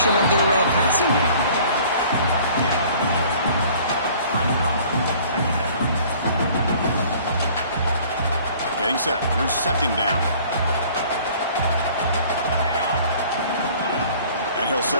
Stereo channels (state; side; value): inverted; both; correlation -0.52